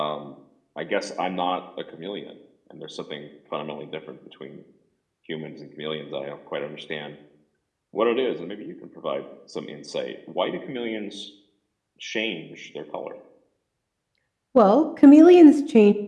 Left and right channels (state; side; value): identical; both; correlation 1.00